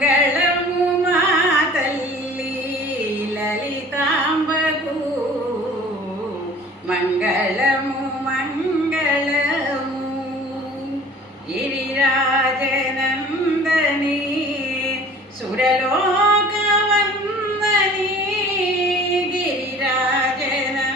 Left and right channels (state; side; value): normal; both; correlation 0.47